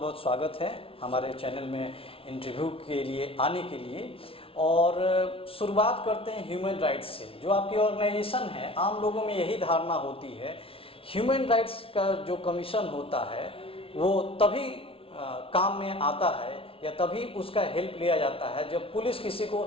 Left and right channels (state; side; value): late; right; 0.26 ms